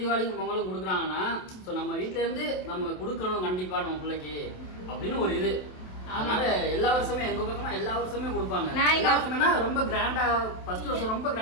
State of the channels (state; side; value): late; right; 27 ms